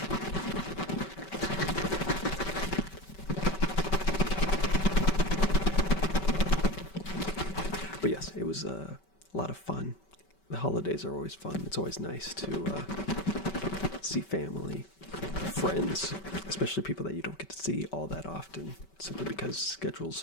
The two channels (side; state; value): right; late; 5.2 ms